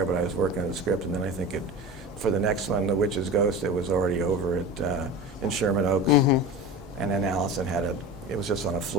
but I was working on the script, and then I think for the next one, The Witch's Ghost, it was already over in Sherman Oaks. And then Allison it was just on a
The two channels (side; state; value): right; noise; hum, 21 dB below the sound